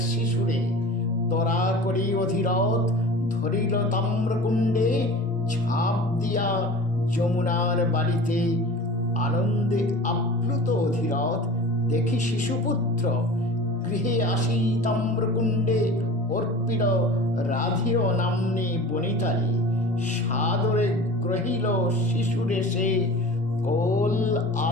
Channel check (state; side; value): normal; both; correlation 0.39